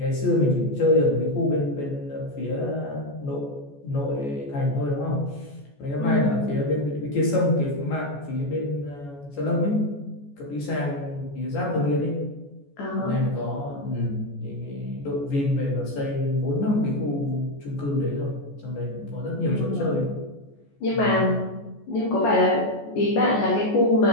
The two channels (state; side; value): late; right; 14 ms